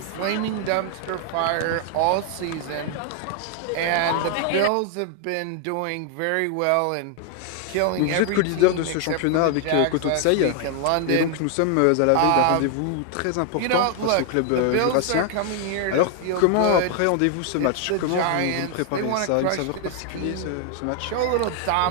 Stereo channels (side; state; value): both; different; correlation 0.00